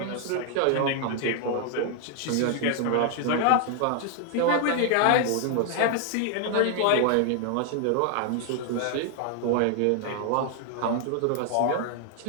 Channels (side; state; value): both; different; correlation 0.00